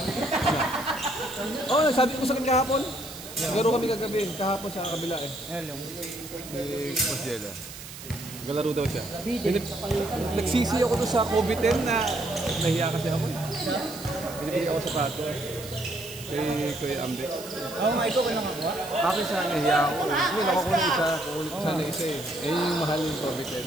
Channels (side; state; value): right; noise; hiss, 13 dB below the sound